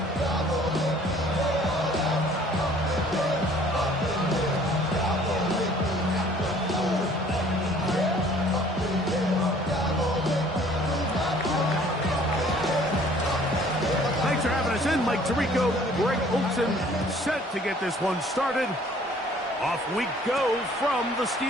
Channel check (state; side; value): normal; both; correlation 0.55